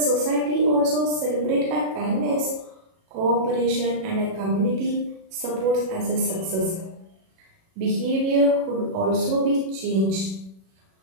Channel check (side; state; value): left; late; 37 ms